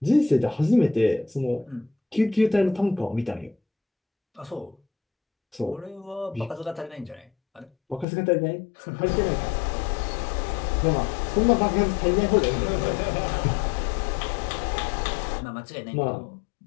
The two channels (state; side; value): drops out; right; at 8.1 s